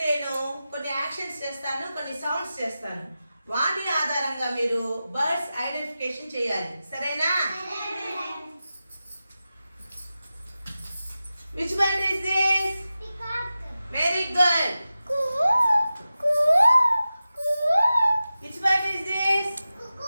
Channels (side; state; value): both; inverted; correlation -0.94